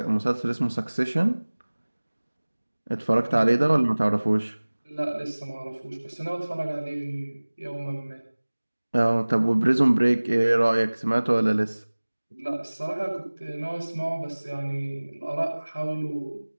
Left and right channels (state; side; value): inverted; both; correlation -1.00